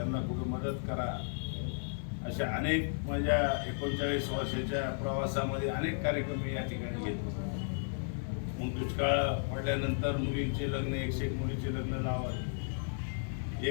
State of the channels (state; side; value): silent; right; 55 dB below the other